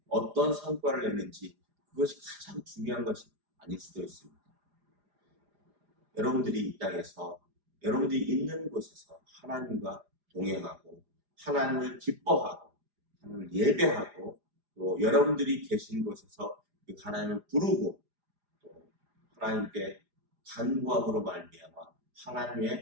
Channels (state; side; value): late; left; 4.9 ms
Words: 어떤 성과를 내는지 그것이 가장 중요한 것이 아닐 수도 있습니다. 여러분들이 이 땅에서 여러분들이 있는 곳에서 하나님과 동행하고 하나님을 기뻐하고 하나님을 예배하고 또 여러분들이 계신 곳에서 그 하나님을 부르고 또 하나님께 간구함으로 말미암아